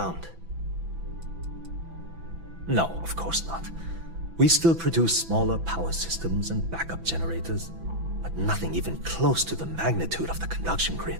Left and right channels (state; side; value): late; left; 6.0 ms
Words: No, of course not. We still produce smaller power systems and backup generators, but nothing even close to the magnitude of the conduction